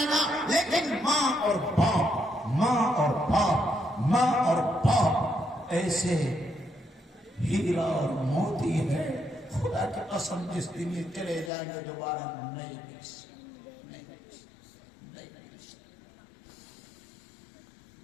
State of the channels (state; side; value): drops out; right; at 11.5 s